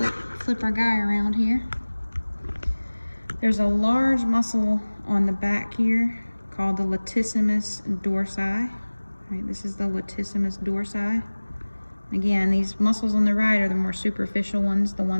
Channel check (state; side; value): inverted; both; correlation -1.00